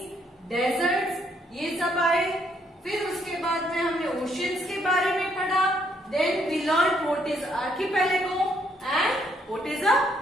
deserts, ये सब आए. फिर उसके बाद में हमने ओशियंस के बारे में पढ़ा. Then we learn what is archipelago and what is a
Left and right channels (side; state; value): both; normal; correlation 0.71